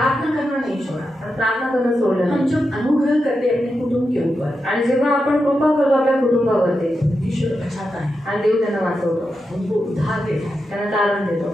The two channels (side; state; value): both; normal; correlation 0.88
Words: करना नहीं छोड़ा। आणि प्रार्थना करणं सोडलं हम नाही. जब अनुग्रह करते हैं अपने कुटुंब के ऊपर, आणि जेव्हा आपण कृपा करतो आपल्या कुटुंबावरती ईश्वर बचाता है, आणि देव त्यांना वाचवतो, उनको उद्धार देता है। त्यांना तारण देतो.